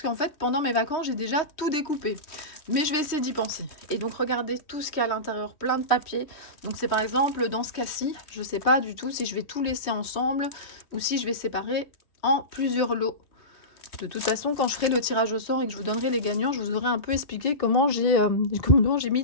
qu'en fait, pendant mes vacances, j'ai déjà tout découpé. Mais je vais essayer d'y penser. Et donc, regardez tout ce qu'il y a à l'intérieur, plein de papier. Donc, c'est par exemple, dans ce cas-ci, je ne sais pas du tout si je vais tout laisser ensemble ou si je vais séparer en plusieurs lots. De toute façon, quand je ferai le tirage au sort et que je vous donnerai les gagnants, je vous aurai un peu expliqué comment j'ai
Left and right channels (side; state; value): right; late; 3.1 ms